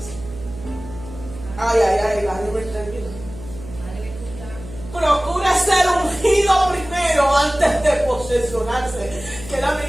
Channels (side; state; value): right; noise; hum, 14 dB below the sound